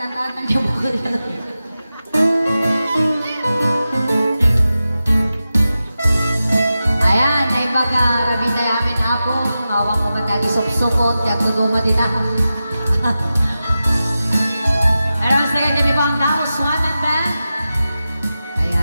niyo po. Ayan, ay baga rabi tayo amin apo. Ngawang ko matagi sop-sopot. Yang tuduma dita. Pero sige, dami po ang tao. Swan and band.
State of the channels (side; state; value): both; inverted; correlation -0.93